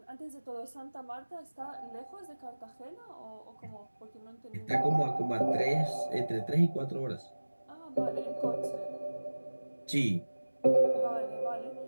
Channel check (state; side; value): inverted; both; correlation -1.00